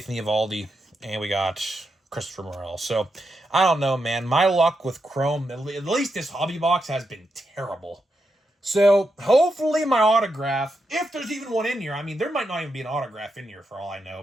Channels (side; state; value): both; normal; correlation 0.85